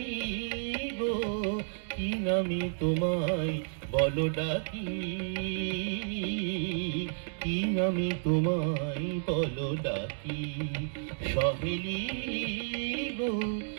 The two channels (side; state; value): left; silent; digital silence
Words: গো কি নামে তোমায় বলো ডাকি, কি নামে তোমায় বলো ডাকি, সহেলি গো,